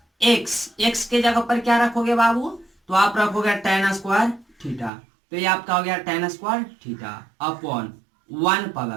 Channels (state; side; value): drops out; left; at 4.9 s